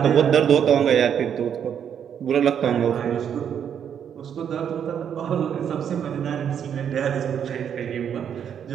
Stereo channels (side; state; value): left; quieter; 8.5 dB